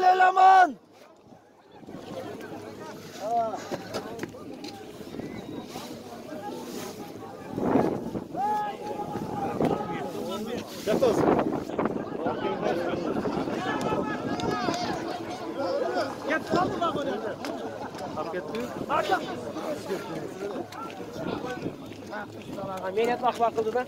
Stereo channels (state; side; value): identical; both; correlation 1.00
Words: eleman. Yatos. Git kaldı bak oraya. Hak etti. Menet bak bakıldı da.